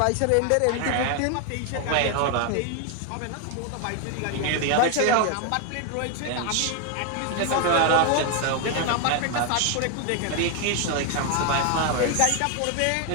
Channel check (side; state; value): both; different; correlation 0.01